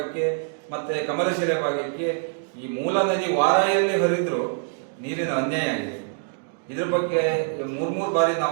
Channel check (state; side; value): silent; left; digital silence